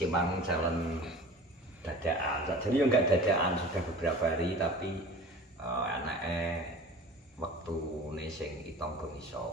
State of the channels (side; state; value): both; normal; correlation 0.40